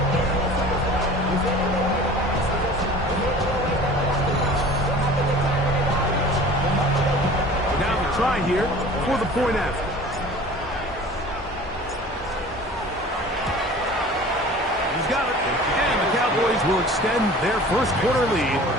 Try here for the point after. He's got it. And the Cowboys will extend their 1st quarter lead.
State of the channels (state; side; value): normal; both; correlation 0.43